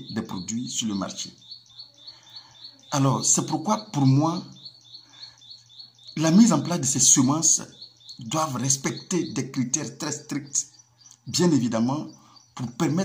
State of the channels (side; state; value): both; identical; correlation 1.00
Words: des produits sur le marché. Alors, c'est pourquoi, pour moi, la mise en place de ces semences doivent respecter des critères très stricts, bien évidemment, pour